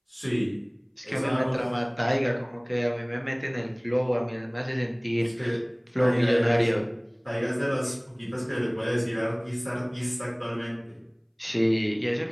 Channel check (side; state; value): both; identical; correlation 1.00